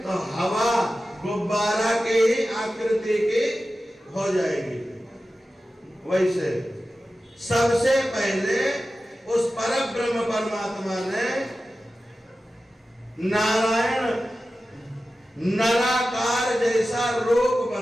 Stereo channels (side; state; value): both; normal; correlation 0.94